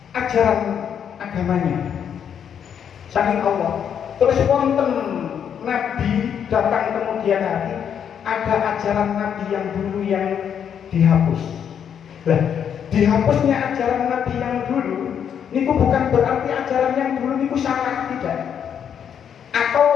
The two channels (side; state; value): right; quieter; 8.3 dB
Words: ajaran agamanya saking Allah. Terus wonten nabi datang kemudian hari, ada ajaran nabi yang dulu yang dihapus. Nah, dihapusnya ajaran nabi yang dulu niku bukan berarti ajaran yang dulu niku salah, tidak.